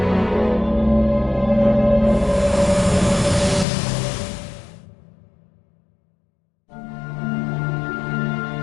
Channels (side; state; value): right; drops out; at 3.7 s